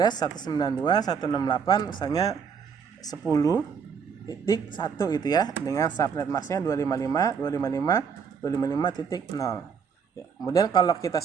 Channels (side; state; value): left; quieter; 6.5 dB